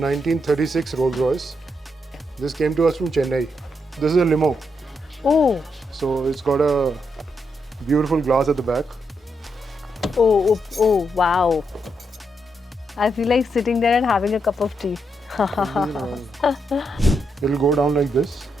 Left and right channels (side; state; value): both; normal; correlation 0.81